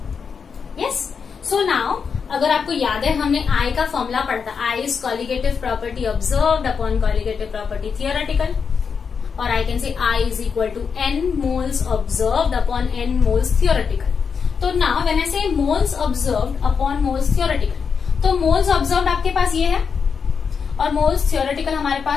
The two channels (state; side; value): quieter; right; 6.0 dB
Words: yes. So now अगर आपको याद है हमने I का फॉर्मूला पढ़ता, I is colligative property observed upon colligative property theoretical, और I can say I is equal to n moles observed upon n moles theoretical. तो now when I say moles observed upon moles theoretical, तो moles observed आपके पास ये है और moles theoretical हमारे